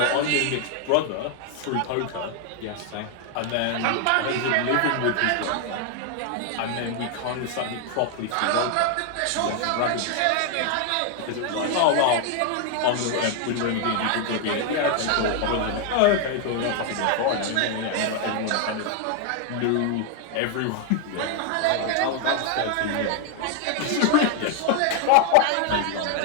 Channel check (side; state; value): both; different; correlation 0.00